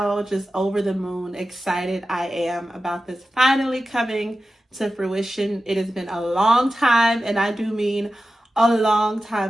just over the moon excited I am about this finally coming to fruition. It has been a long time, and I do mean a long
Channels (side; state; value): both; normal; correlation 0.93